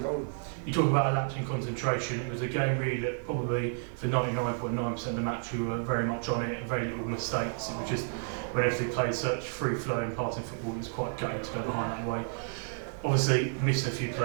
goal. You talk about a lapse in concentration. It was a game really that probably for 99.9% of the match we were very much on it, very little mistakes. It was just when everything played such free-flowing passing football, it was quite gutting to go behind that way. Obviously missed a few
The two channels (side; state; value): left; silent; 57 dB below the other